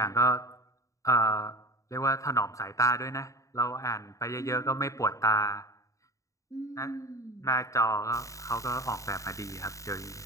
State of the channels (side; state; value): right; late; 0.16 ms